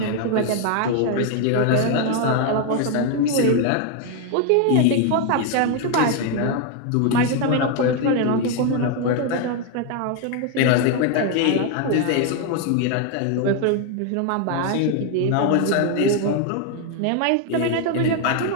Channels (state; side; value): different; both; correlation 0.01